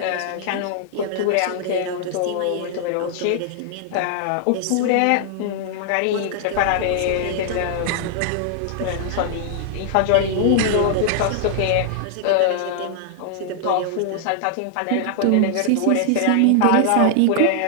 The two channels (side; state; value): both; different; correlation -0.01